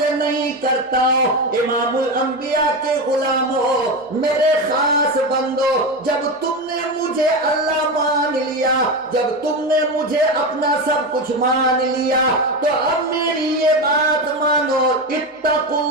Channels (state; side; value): normal; both; correlation 0.17